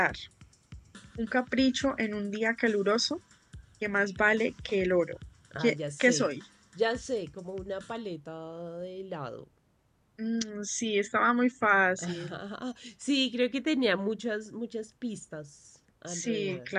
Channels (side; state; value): both; identical; correlation 1.00